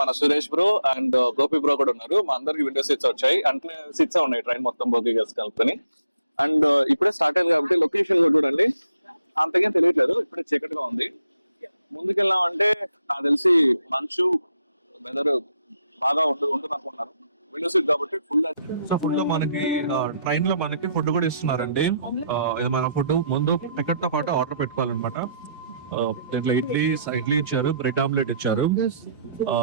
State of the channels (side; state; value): both; inverted; correlation -0.76